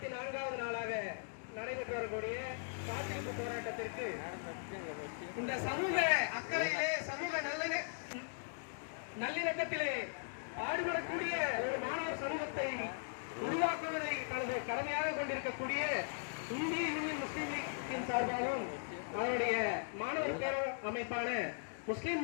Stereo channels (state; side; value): silent; right; digital silence